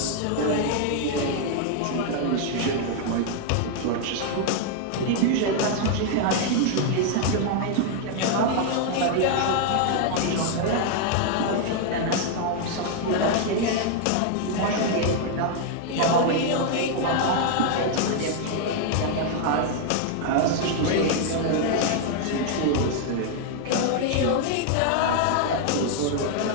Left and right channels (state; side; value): different; both; correlation 0.00